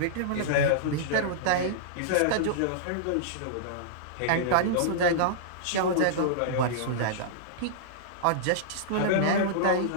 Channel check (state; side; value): different; both; correlation -0.02